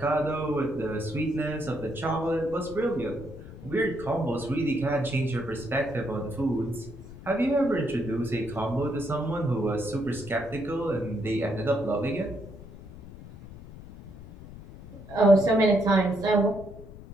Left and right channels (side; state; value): left; noise; rumble, 15 dB below the sound